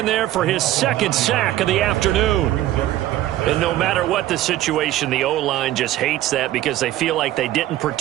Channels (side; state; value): left; quieter; 14.3 dB